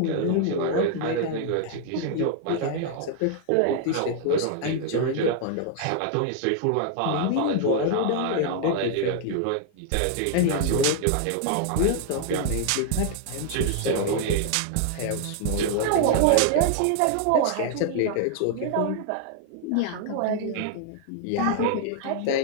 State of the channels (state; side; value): different; both; correlation 0.00